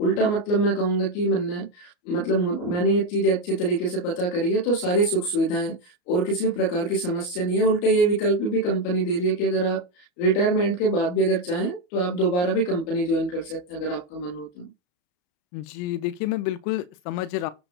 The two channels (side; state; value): right; late; 34 ms